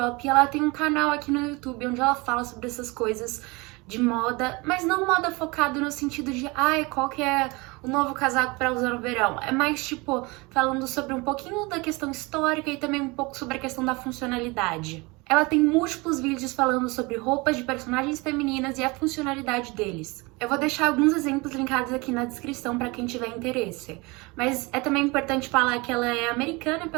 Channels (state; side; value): quieter; left; 25.5 dB